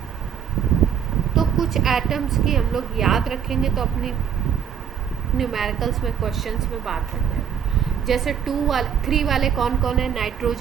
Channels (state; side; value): quieter; left; 8.2 dB